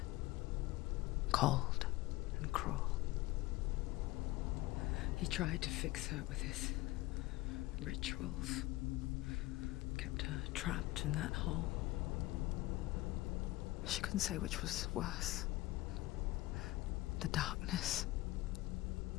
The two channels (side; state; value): right; quieter; 18.7 dB